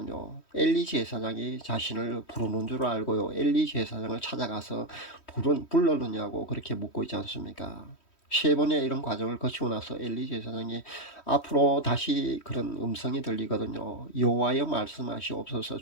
엘리 제사장이 자신을 부르는 줄 알고요, 엘리 제사장을 찾아가서 불렀느냐고 그렇게 묻고 있지 않습니까? 세 번의 이런 과정을 거치고 나서 엘리 제사장이 앞으로 다시 그런 음성이 들리거든요. 여호와여 말씀하시옵소서,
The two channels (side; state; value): right; late; 3.1 ms